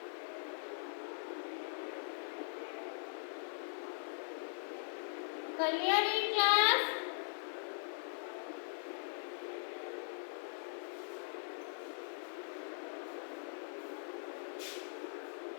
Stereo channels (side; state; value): right; silent; digital silence